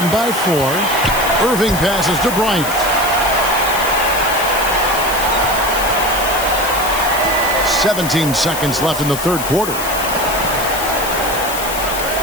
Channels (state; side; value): noise; left; hiss, 7 dB below the sound